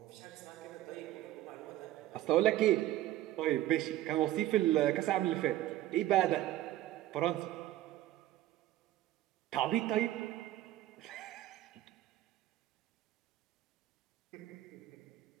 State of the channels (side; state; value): left; quieter; 14.3 dB